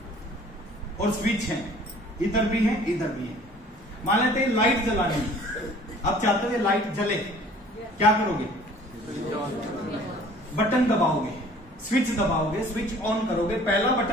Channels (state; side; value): normal; both; correlation 0.51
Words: और स्विच है, इधर भी है इधर भी है। मान लेते हैं लाइट जलानी है, आप चाहते हो ये लाइट जले, क्या करोगे? बटन दबाओगे, स्विच दबाओगे, स्विच ऑन करोगे। पहला